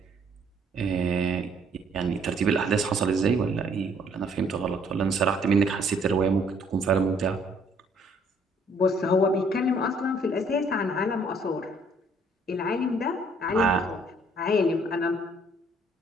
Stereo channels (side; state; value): both; normal; correlation 0.63